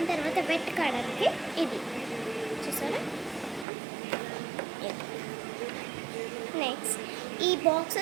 తర్వాత వెట్ కావడానికి ఇది చూసారా. నెక్స్ట్ ఈ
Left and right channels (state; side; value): drops out; left; at 3.7 s